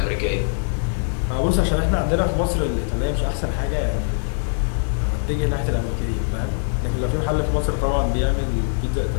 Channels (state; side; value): silent; right; digital silence